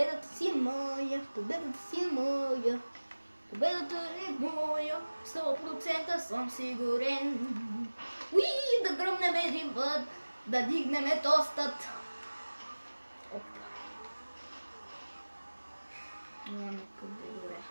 си е моя. 100% съм сигурен. Да гръмнем един път. Да дигнем тостът. Добре.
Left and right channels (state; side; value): inverted; both; correlation -1.00